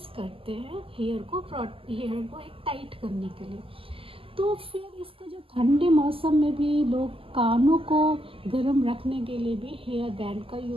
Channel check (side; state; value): left; late; 0.26 ms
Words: करते हैं, हेयर को एक टाइट करने के लिए। तो फिर इसका जो ठंडे मौसम में भी लोग कानों को गर्म रखने के लिए भी हेयर बैंड का